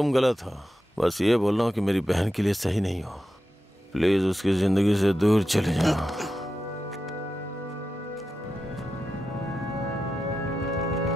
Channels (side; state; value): both; normal; correlation 0.90